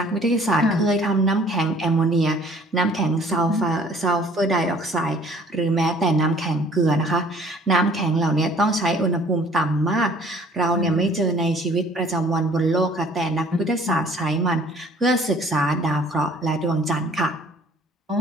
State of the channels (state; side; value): normal; both; correlation 0.55